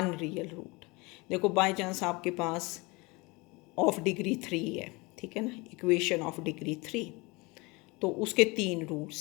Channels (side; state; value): right; quieter; 25.5 dB